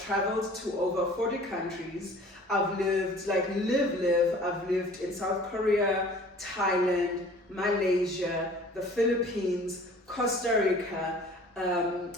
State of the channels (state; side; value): normal; both; correlation 0.48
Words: traveled to over 40 countries. I've lived, I've lived in South Korea, Thailand, Malaysia, the Philippines, Costa Rica,